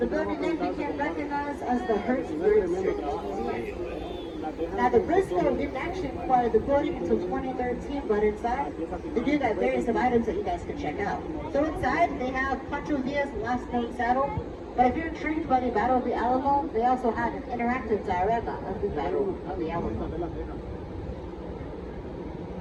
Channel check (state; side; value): identical; both; correlation 1.00